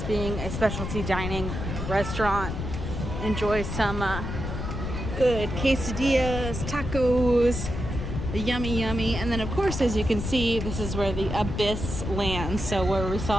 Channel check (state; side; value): noise; left; rumble, 5 dB below the sound